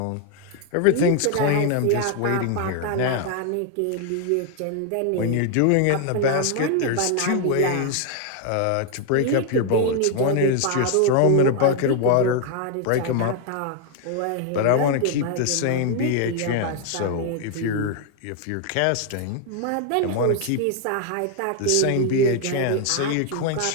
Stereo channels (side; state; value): both; different; correlation 0.00